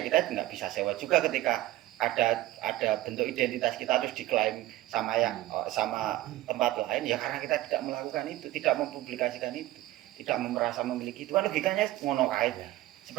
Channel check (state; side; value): quieter; left; 16.1 dB